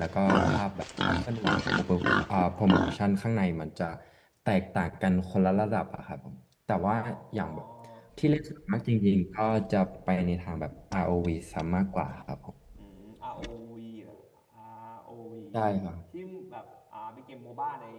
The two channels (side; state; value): both; identical; correlation 1.00